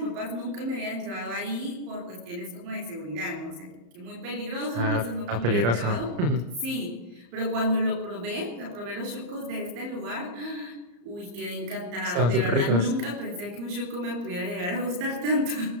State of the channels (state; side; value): late; left; 34 ms